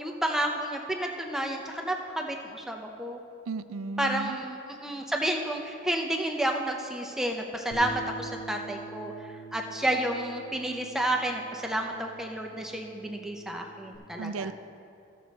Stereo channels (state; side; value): normal; both; correlation 0.63